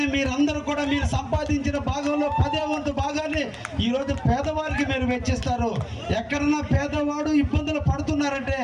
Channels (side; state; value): both; identical; correlation 1.00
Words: మీరందరూ కూడా మీరు సంపాదించిన భాగంలో 10వ వంతు భాగాన్ని ఈరోజు పేదవారికి మీరు వెచ్చిస్తారు. ఎక్కడన్నా పేదవాడు ఇబ్బందులు పడుతున్నారంటే